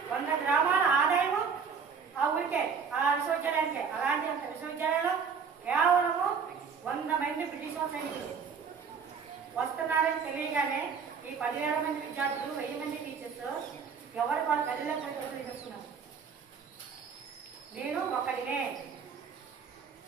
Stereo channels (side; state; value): left; quieter; 6.1 dB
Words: 100 గ్రామాల ఆదాయము ఆ ఊరికే, ఆ విశ్వవిద్యాలయానికే. అలాంటి విశ్వవిద్యాలయంలో కేవలము 100 మంది బ్రిటిష్ సైనికులు వస్తున్నారని తెలియగానే ఈ 10,000 మంది విద్యార్థులు, 1000 మంది టీచర్స్ ఎవరు వాళ్ళ గదిలో చేస్తున్నారు. నేను ఒక్కడినే,